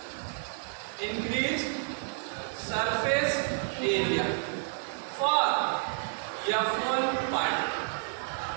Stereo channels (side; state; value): left; silent; 58 dB below the other